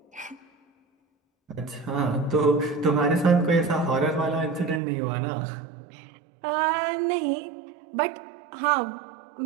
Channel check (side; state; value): left; drops out; at 4.8 s